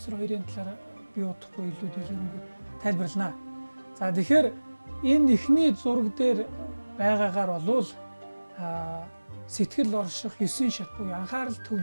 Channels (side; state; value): both; inverted; correlation -1.00